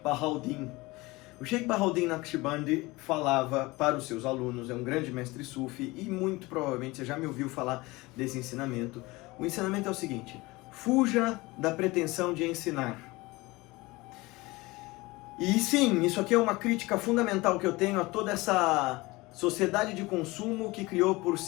O Sheikh Bahauddin Naqshbandi falava para os seus alunos, é um grande mestre sufi e muito provavelmente você já me ouviu falar desse ensinamento. O ensinamento é o seguinte: fuja da pretensão de ensinar. E sim, isso aqui é uma crítica fundamental que eu tenho a toda essa sociedade de consumo que criou por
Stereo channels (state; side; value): quieter; right; 22.0 dB